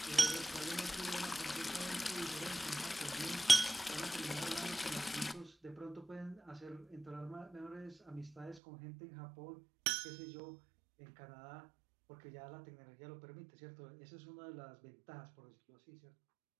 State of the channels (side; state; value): left; drops out; at 8.6 s